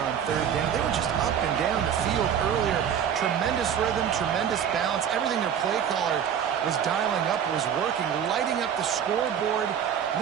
third down, they were just up and down the field earlier. Tremendous rhythm, tremendous balance. Everything their play caller was dialing up was working, lighting up the scoreboard. And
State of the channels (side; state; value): left; quieter; 8.5 dB